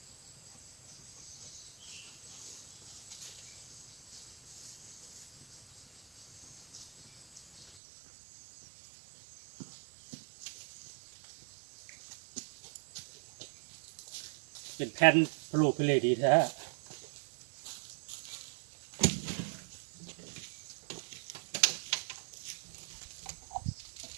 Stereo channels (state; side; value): drops out; left; at 7.7 s